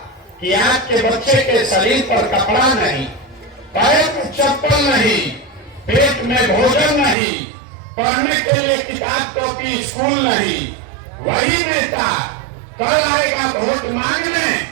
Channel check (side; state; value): left; drops out; at 7.2 s